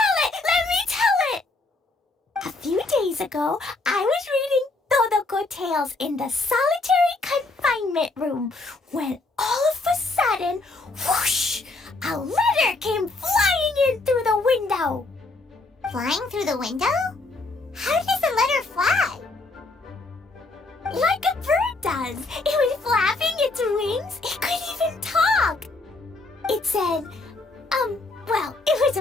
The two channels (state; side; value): quieter; right; 3.3 dB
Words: it! A few days ago, I was reading Todoko Tales in the solitary confinement room when all of a sudden, whoosh! A letter came flying in through the window. Flying through the window? How does a letter fly? Like a bird does. It was flapping its wings. It could even talk. It said, well, it was